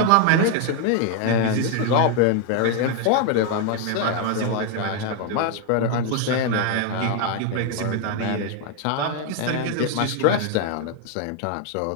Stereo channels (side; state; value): both; different; correlation 0.01